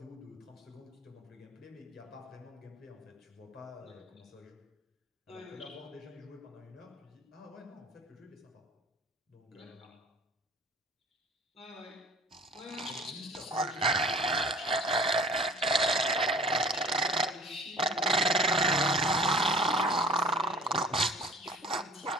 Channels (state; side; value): normal; both; correlation 0.47